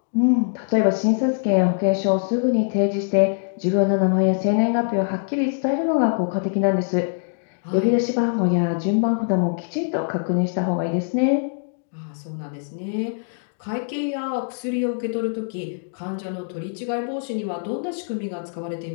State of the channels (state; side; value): silent; right; digital silence